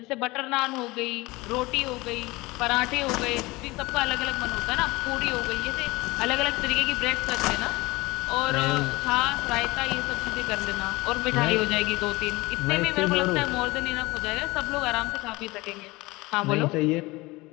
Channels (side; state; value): right; quieter; 22.0 dB